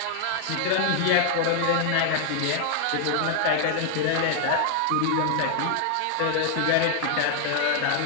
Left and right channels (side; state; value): both; different; correlation 0.00